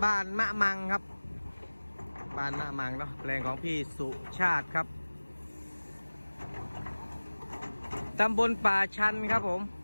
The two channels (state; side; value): inverted; both; correlation -1.00